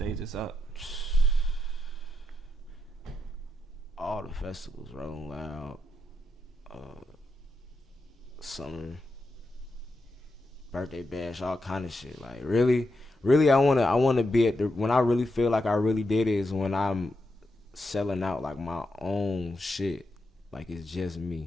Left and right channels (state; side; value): normal; both; correlation 0.85